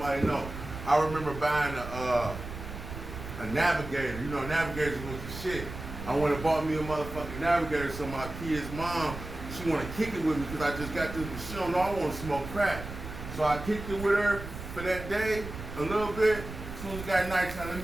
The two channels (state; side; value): noise; right; rumble, 10 dB below the sound